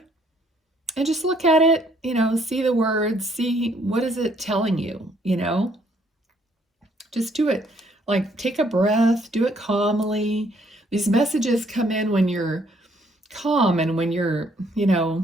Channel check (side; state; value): both; normal; correlation 0.66